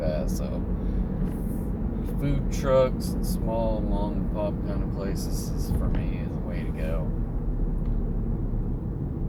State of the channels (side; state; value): both; identical; correlation 1.00